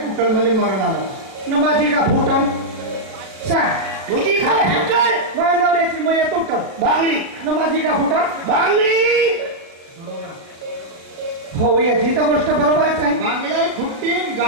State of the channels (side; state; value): left; late; 36 ms